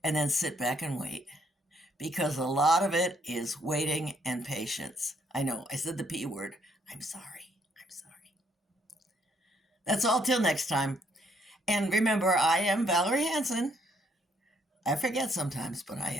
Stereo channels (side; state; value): both; normal; correlation 0.70